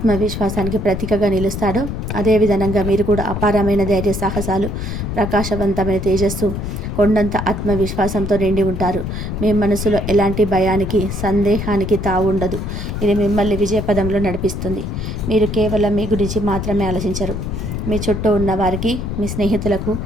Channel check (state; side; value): noise; left; rumble, 4 dB below the sound